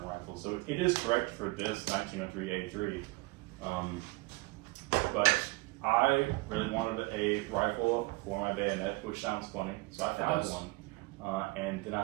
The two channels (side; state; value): left; quieter; 23.7 dB